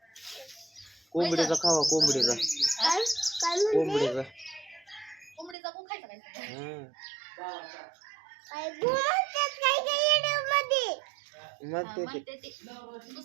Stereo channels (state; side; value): drops out; left; at 5.6 s